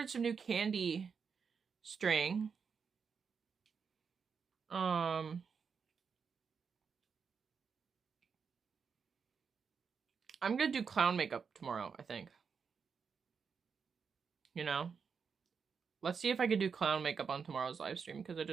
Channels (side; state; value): left; quieter; 6.0 dB